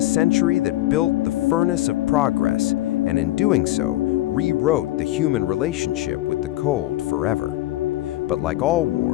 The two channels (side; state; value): right; quieter; 16.2 dB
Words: century that built the furnace of progress, and in doing so, rewrote the human relationship with the cold forever. But like all